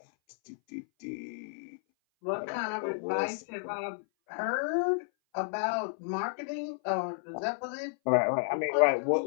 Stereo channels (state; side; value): silent; right; 57 dB below the other